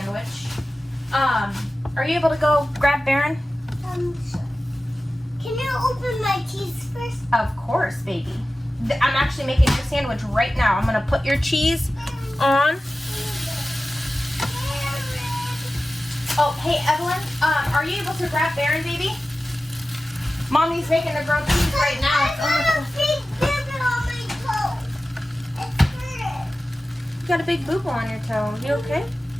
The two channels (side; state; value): both; normal; correlation 0.95